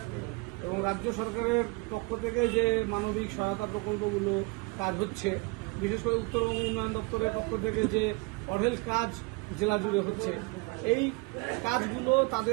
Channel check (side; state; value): left; quieter; 27.0 dB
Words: এবং রাজ্য সরকারের পক্ষ থেকে যে মানবিক সহায়তা প্রকল্পগুলো কাজ হচ্ছে, বিশেষ করে উত্তরবঙ্গ উন্নয়ন দপ্তরের পক্ষ থেকে যে অঢেল কাজ জেলা জুড়ে হচ্ছে, এই কাজগুলো